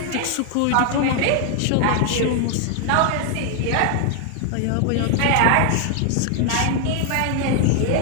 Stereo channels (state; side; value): different; both; correlation 0.00